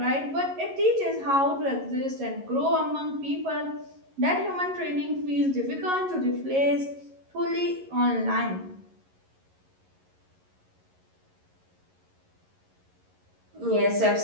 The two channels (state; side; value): late; left; 11 ms